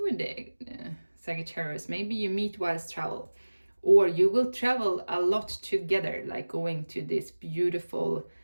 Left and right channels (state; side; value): inverted; both; correlation -1.00